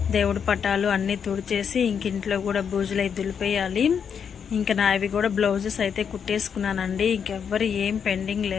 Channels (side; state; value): right; quieter; 7.2 dB